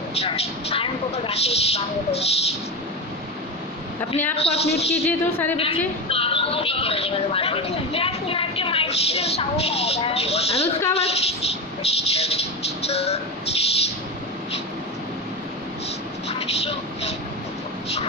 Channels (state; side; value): normal; both; correlation 0.20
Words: अपने आप को आप म्यूट कीजिए तो सारे बच्चे। अनुष्का वक्त